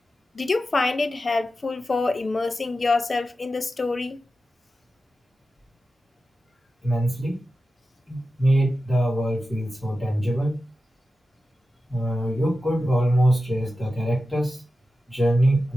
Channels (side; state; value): both; normal; correlation 0.92